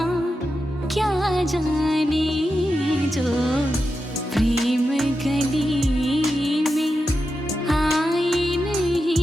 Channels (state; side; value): normal; both; correlation 0.89